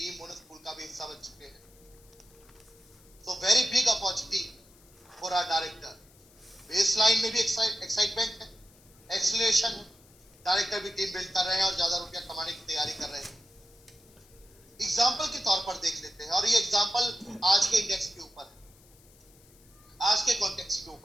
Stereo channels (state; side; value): noise; left; hiss, 27 dB below the sound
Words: बोनस पूल का भी हिस्सा बन चुके हैं. तो very big opportunity for our director. Baseline में भी एक्साइटमेंट है, एक्सीलरेशन है. डायरेक्टर भी टीम बिल्ड कर रहे हैं और ज्यादा रुपया कमाने की तैयारी कर रहे हैं. एग्जाम्पल के तौर पर देख लेते हैं और ये एग्जाम्पल आज के इंडेक्स के ऊपर है, आज के कॉन्टेक्स्ट के